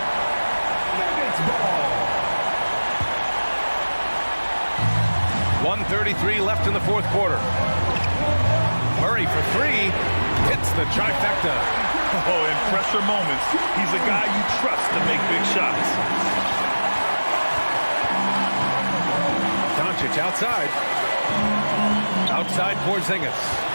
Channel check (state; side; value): inverted; both; correlation -1.00